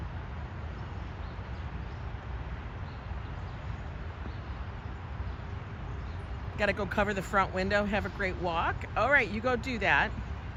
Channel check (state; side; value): identical; both; correlation 1.00